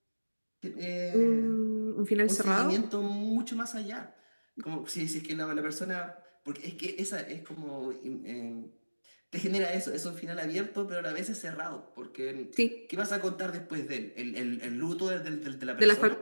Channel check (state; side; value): inverted; both; correlation -1.00